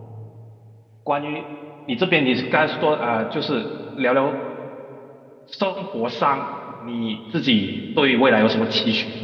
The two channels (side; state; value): both; identical; correlation 1.00